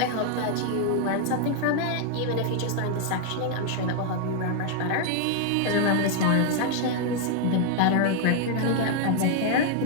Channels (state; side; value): different; both; correlation 0.00